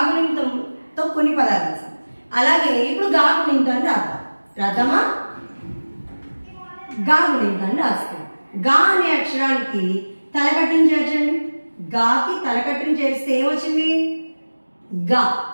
కొన్ని పదాలు రాసాం. అలాగే ఇప్పుడు గాగుణింతాన్ని రాద్దామా? గాగుణింతాన్ని రాస్తాం. గా అనే అక్షరానికి తలకట్టుని చేర్చండి. గాకి తలకట్టుని చేరిస్తే ఏమొచ్చింది? గా.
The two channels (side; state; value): both; inverted; correlation -1.00